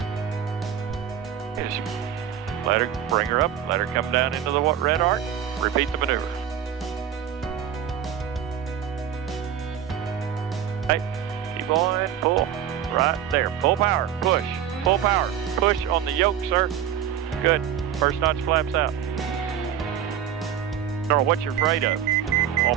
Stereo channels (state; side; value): quieter; left; 9.5 dB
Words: Just let her, bring her up. Let her come down into the red arc. Repeat the maneuver. Okay, keep on, pull. Right there. Full power. Push. Full power. Push on the yoke, sir. Good. First notch flaps out. I don't know what you're afraid of on